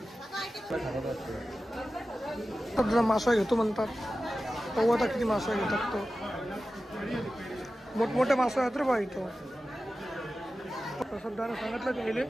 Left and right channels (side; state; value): both; normal; correlation 0.94